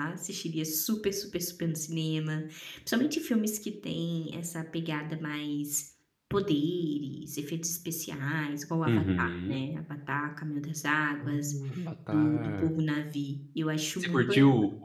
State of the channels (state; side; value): identical; both; correlation 1.00